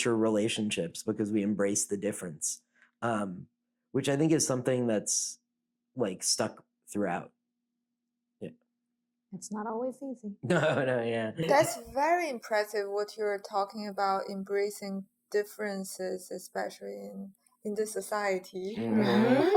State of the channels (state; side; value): identical; both; correlation 1.00